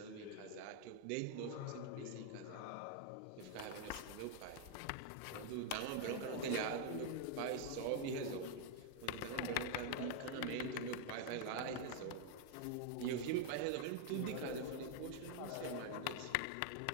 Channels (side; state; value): both; different; correlation 0.00